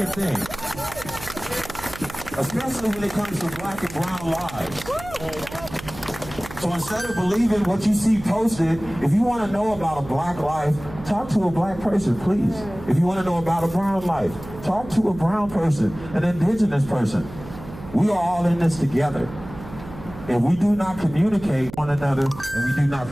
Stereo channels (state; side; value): noise; right; hum, 15 dB below the sound